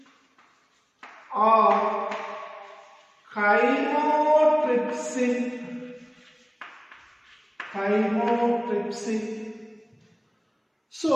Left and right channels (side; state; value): both; identical; correlation 1.00